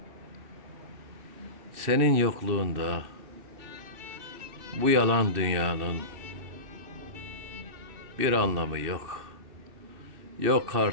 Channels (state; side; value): late; left; 2.6 ms